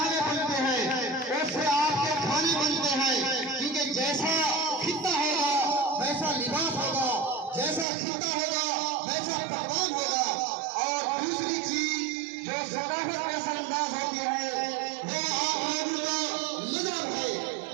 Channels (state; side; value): drops out; left; at 7.9 s